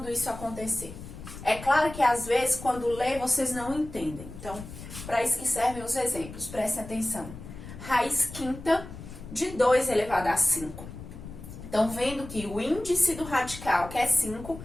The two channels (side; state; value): left; noise; rumble, 13 dB below the sound